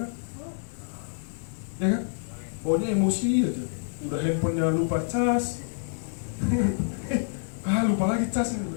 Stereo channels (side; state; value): right; silent; 58 dB below the other